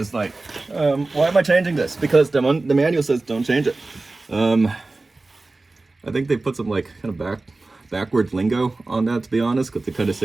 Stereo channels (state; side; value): quieter; left; 3.3 dB